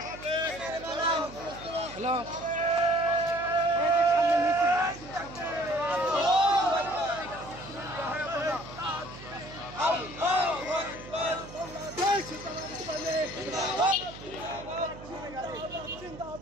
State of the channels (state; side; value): noise; right; hum, 15 dB below the sound